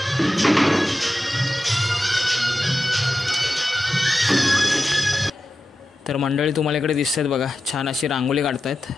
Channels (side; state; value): both; normal; correlation 0.92